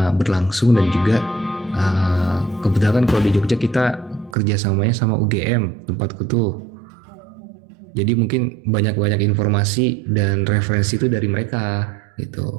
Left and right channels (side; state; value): left; drops out; at 4.4 s